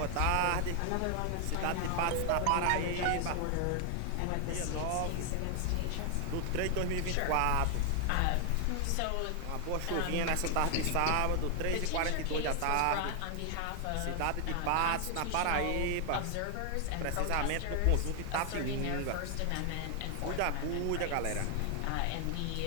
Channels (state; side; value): different; both; correlation 0.00